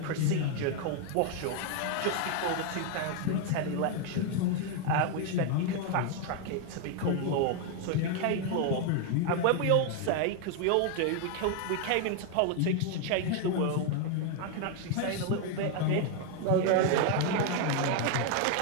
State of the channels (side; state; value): both; different; correlation 0.01